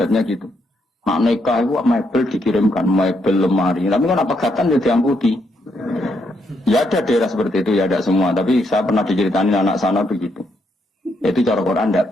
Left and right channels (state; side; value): normal; both; correlation 0.77